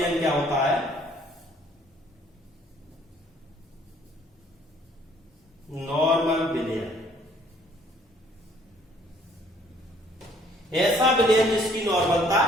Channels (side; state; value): both; normal; correlation 0.60